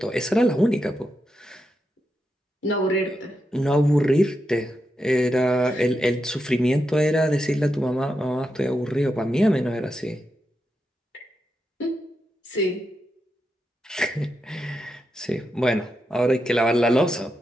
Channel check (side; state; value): both; normal; correlation 0.86